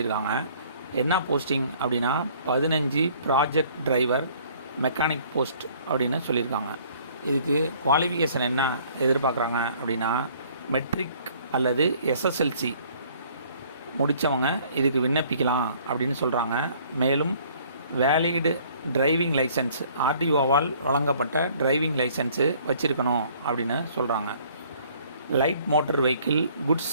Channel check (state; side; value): inverted; both; correlation -0.57